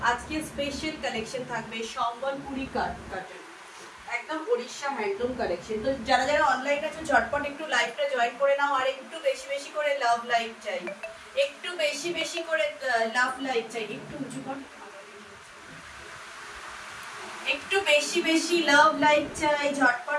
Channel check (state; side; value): identical; both; correlation 1.00